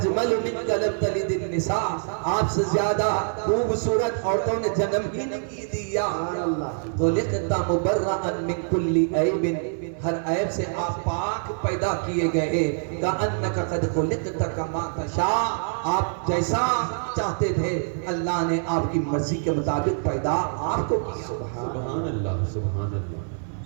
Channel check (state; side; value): silent; left; 60 dB below the other